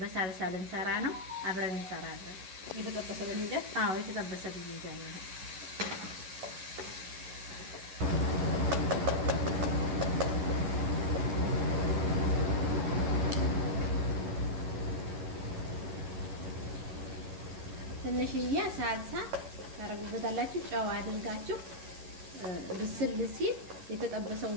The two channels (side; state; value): left; late; 11 ms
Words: በሳልሳ ልንሰራ ነው። አብረን እንሰራለን። የተጠበሰ ብጅንጃን? አዎ የተጠበሰ ብጅንጃን ነው። ትንሽዬ ሳልሳ ታረጉበታላችሁ። ጨው አድርጋችሁ ብስል ሲል